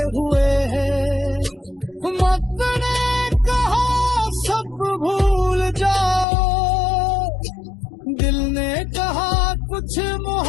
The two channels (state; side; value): drops out; right; at 6.2 s